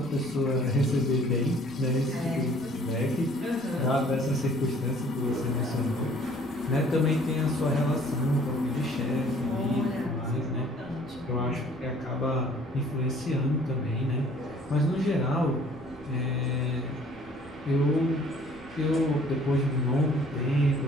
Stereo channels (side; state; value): right; noise; rumble, 27 dB below the sound